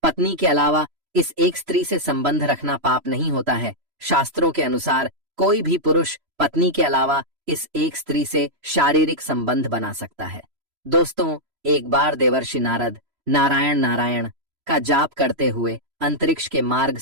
पत्नी के अलावा इस एक स्त्री से संबंध रखना पाप नहीं होता है। शास्त्रों के अनुसार कोई भी पुरुष पत्नी के अलावा इस एक स्त्री से शारीरिक संबंध बना सकता है। दोस्तों, एक बार देवर्षि नारद नारायण नारायण का जाप करते हुए अंतरिक्ष के मार्ग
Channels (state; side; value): late; left; 3.0 ms